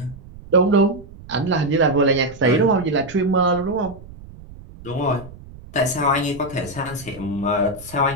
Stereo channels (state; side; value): noise; right; rumble, 18 dB below the sound